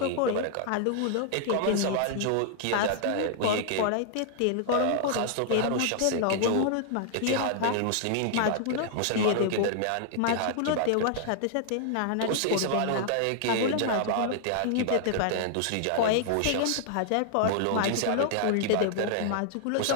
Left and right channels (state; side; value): different; both; correlation -0.01